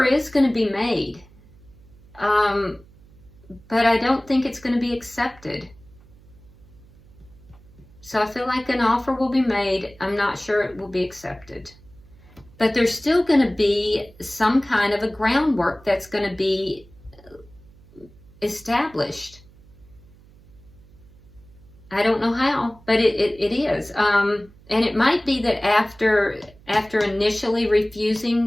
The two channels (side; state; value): right; noise; hum, 25 dB below the sound